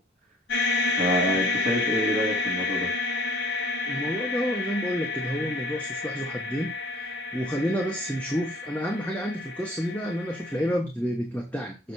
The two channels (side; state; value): both; normal; correlation 0.54